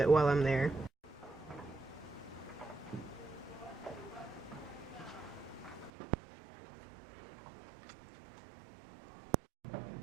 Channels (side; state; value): left; drops out; at 5.9 s